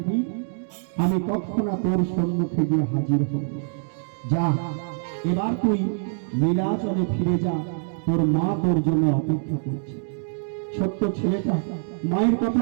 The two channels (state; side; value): silent; left; digital silence